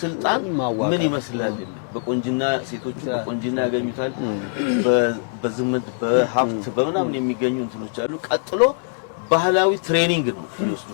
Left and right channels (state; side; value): silent; right; digital silence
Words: ስልጣን ምን ይመስላል? በቆንጅና ሴቶቹ በቆንጅና ያገኙታል። በዝምት በሀብት በመናምን የሚገኙ እንትኖች አሉ። ቀጥሎ ባህላዊ ትሬኒንግ ነው